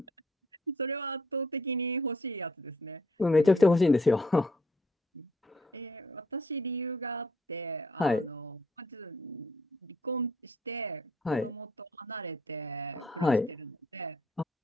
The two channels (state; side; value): normal; both; correlation 0.65